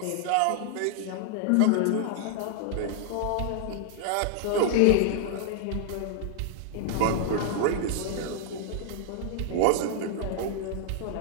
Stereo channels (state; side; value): different; both; correlation -0.01